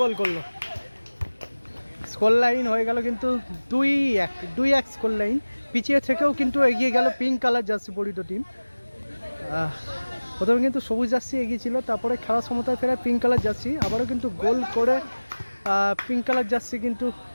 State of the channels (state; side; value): inverted; both; correlation -1.00